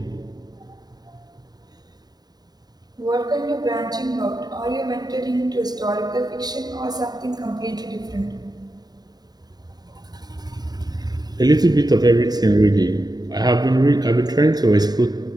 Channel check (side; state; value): left; late; 0.19 ms